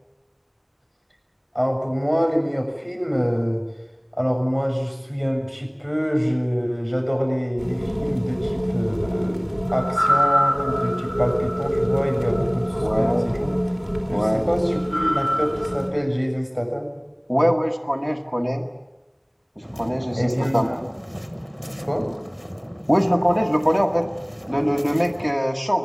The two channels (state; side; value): identical; both; correlation 1.00